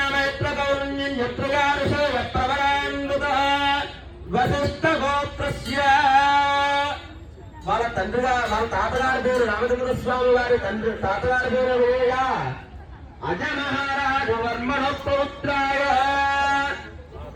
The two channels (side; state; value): both; identical; correlation 1.00